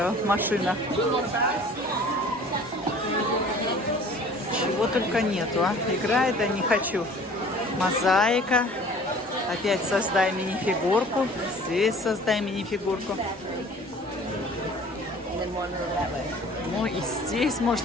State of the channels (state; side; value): normal; both; correlation 0.48